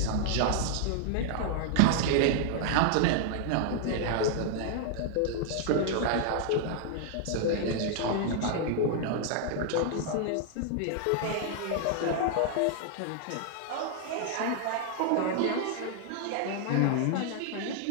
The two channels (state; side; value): different; both; correlation -0.01